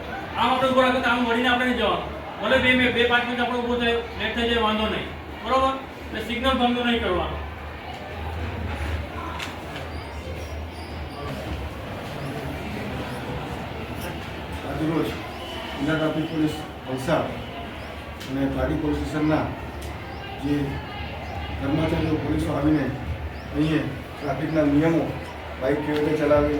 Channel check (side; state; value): both; identical; correlation 1.00